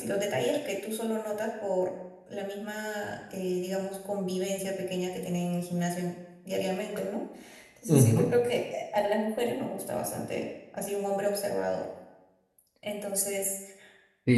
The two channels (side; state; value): both; identical; correlation 1.00